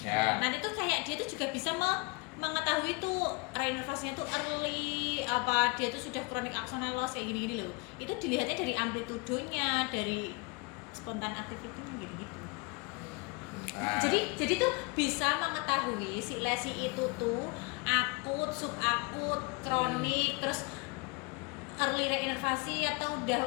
Nanti tuh kayak dia tuh juga bisa mengetahui tuh reinervasinya tuh early apa dia tuh sudah kronik axonal loss kayak gini-gini loh. Itu dilihatnya dari amplitudonya, dari spontan activity-nya gitu-gitu. Nah, Jadi tuh bisa mengetahui si lesi itu tuh akut, subakut, kronik, terus early reinervasi atau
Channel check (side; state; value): right; quieter; 28.5 dB